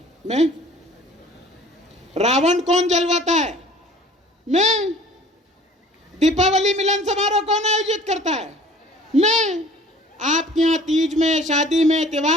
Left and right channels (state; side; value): normal; both; correlation 0.49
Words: मैं। रावण कौन जलवाता है? मैं। दीपावली मिलन समारोह कौन आयोजित करता है? मैं। आपके यहाँ तीज में, शादी में,